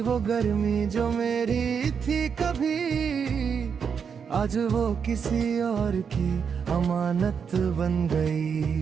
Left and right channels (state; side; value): quieter; left; 6.7 dB